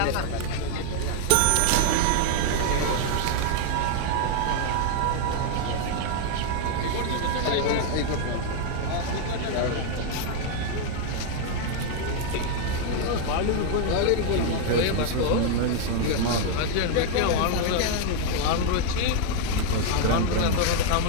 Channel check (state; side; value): different; both; correlation 0.01